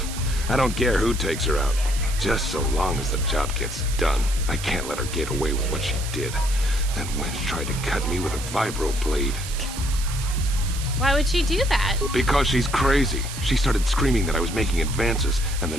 I don't care who takes her out. Just so long as the job gets done. I can't let her get away with what she did. That wench tried to cut me with a vibro blade. Why would she do that? Because she's crazy. She started screaming that I was making advances, and the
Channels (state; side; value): noise; right; hiss, 10 dB below the sound